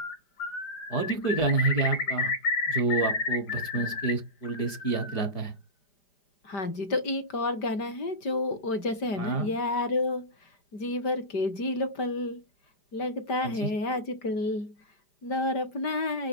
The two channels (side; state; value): right; late; 5.0 ms